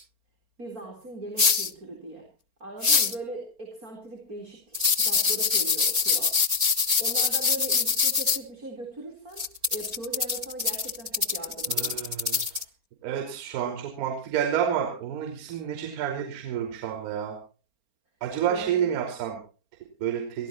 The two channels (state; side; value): late; left; 4.4 ms